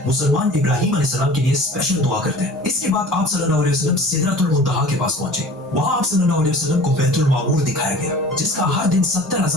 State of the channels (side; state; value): both; normal; correlation 0.43